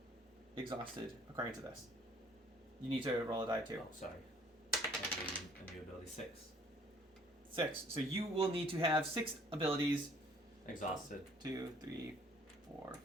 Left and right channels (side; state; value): both; normal; correlation 0.58